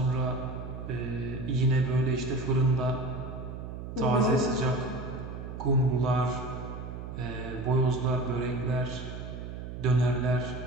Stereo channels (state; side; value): noise; right; hum, 9 dB below the sound